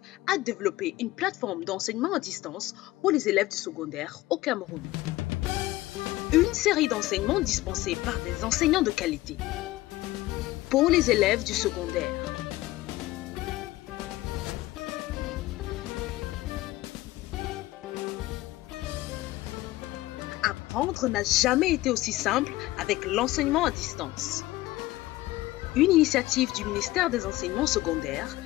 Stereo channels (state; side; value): quieter; right; 17.6 dB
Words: a développé une plateforme d'enseignement à distance pour les élèves du secondaire au Cameroun. Une série d'enseignements dispensés par des enseignants de qualité pour les élèves du secondaire. Apprendre n'a jamais été aussi simple avec l'enseignement à distance. Une initiative du ministère des Enseignements secondaires